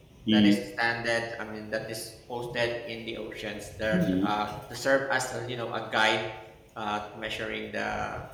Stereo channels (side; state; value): both; identical; correlation 1.00